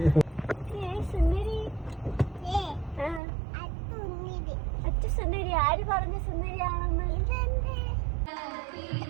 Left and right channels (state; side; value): drops out; left; at 3.2 s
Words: അച്ഛ സുന്ദരി. ആര് പറഞ്ഞ സുന്ദരിയാണെന്ന്?